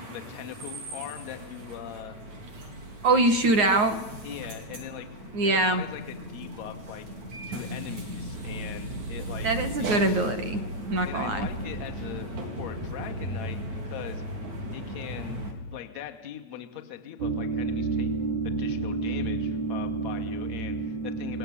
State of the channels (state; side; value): late; left; 8.9 ms